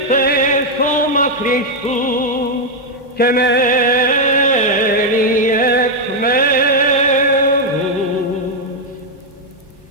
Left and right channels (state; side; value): normal; both; correlation 0.00